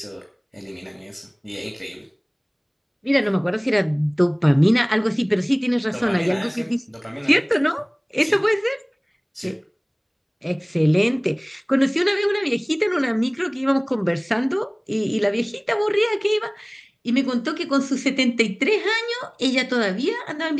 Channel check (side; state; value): both; identical; correlation 1.00